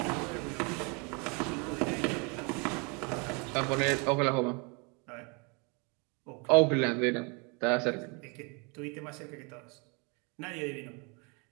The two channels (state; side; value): quieter; left; 31.9 dB